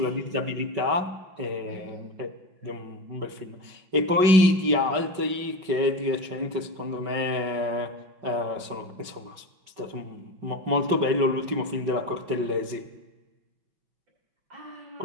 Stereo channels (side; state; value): left; late; 5.4 ms